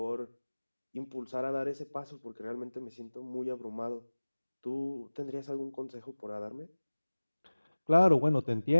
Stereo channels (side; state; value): both; inverted; correlation -1.00